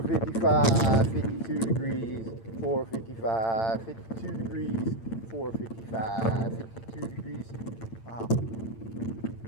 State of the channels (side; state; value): right; late; 8.9 ms